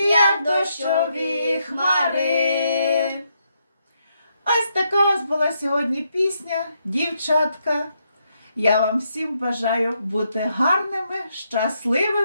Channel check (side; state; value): both; inverted; correlation -0.78